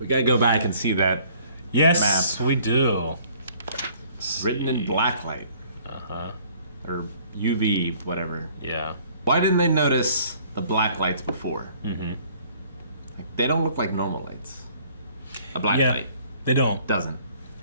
gotta go back and see that Yes, we do. written in black light. Uh-huh. Or UV, whatever. Yeah. Why didn't they notice the black lights before? Mm-hmm. Like, they don't look like normal lights. A black Yeah, light they don't. doesn't.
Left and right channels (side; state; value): both; inverted; correlation -0.58